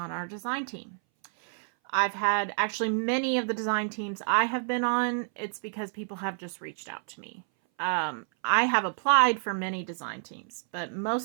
our design team? I've had actually many of the design teams I have been on. It's because people have just reached out to me. I have applied for many design teams, but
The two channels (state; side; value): silent; left; 58 dB below the other